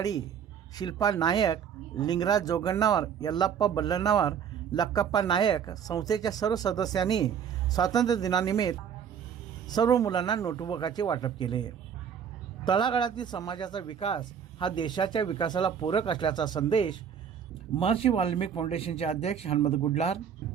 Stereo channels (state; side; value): quieter; left; 7.9 dB